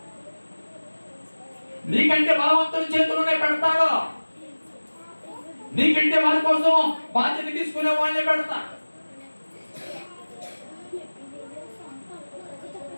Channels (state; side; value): inverted; both; correlation -1.00